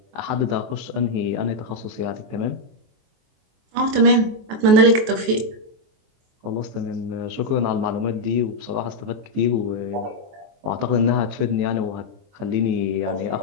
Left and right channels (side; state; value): left; late; 23 ms